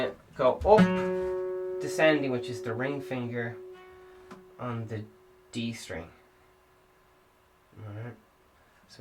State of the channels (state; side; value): identical; both; correlation 1.00